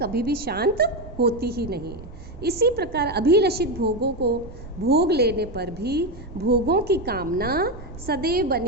भी शांत होती ही नहीं है। इसी प्रकार अभिलषित भोगों को भोग लेने पर भी भोगों की कामना सदैव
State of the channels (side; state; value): right; noise; rumble, 15 dB below the sound